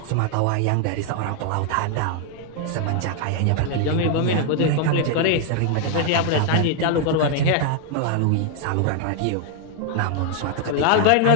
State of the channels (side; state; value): both; different; correlation 0.00